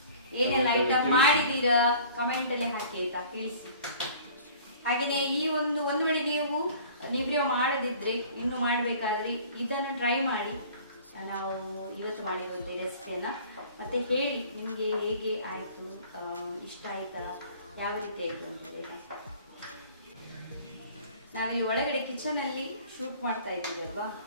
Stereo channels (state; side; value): inverted; both; correlation -0.48